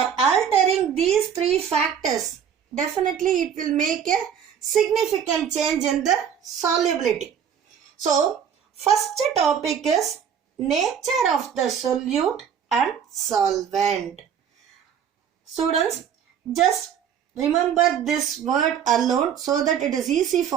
altering these three factors, definitely it will make a significant change in the solubility. So, first topic is nature of the solute and solvent. Students, just remember this word alone so that it is easy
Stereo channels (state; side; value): quieter; left; 8.2 dB